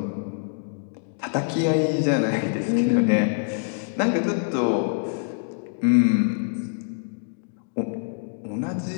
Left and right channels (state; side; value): silent; right; digital silence